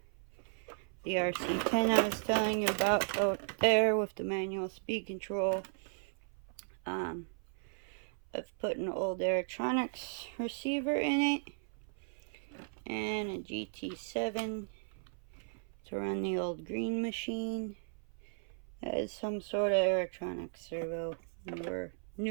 The RC10 I was telling you about out there with the manual speed control. I've put an old electronics receiver in it. and a GT7 to run the old green machine. That is some sort of electronic servo,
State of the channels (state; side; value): silent; left; 54 dB below the other